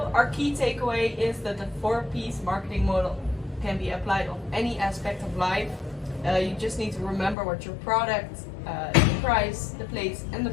our key takeaway is that the 4P's marketing model can be applied on any aspect of life. You just need to remember what your product, the price, the place, and the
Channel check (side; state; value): right; drops out; at 7.4 s